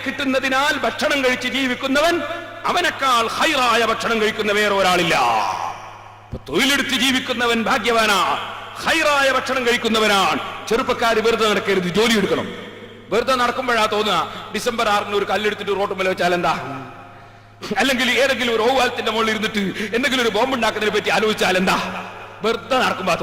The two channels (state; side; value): identical; both; correlation 1.00